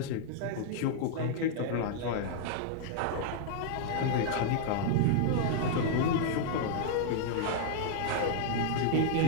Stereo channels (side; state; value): both; different; correlation -0.01